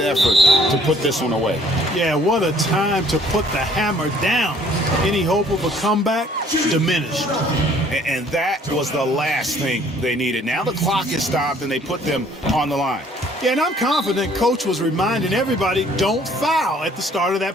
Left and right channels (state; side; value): normal; both; correlation 0.59